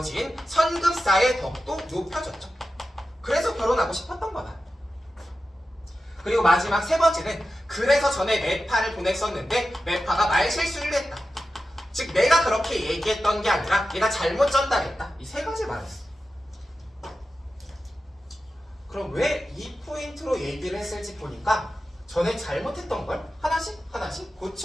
선급사의 덕도 높여졌죠. 그래서 결혼하고 싶었던 거다. 그리고 마지막 3번째는 그래서 전에 매파를 보냈었는데 매파가 말실수를 했다. 즉 내가 그렇게 얘기했던 게 아니라 얘가 잘못 전달했다. 이 3가지 말했어. 그럼 왜 이 포인트로 얘기를 했을지 보니까 전에 잘못했던 걸 하나씩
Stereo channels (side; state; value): both; normal; correlation 0.92